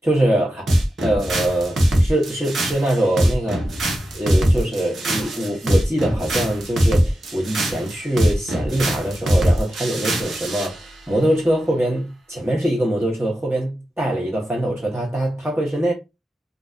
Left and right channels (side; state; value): both; normal; correlation 0.90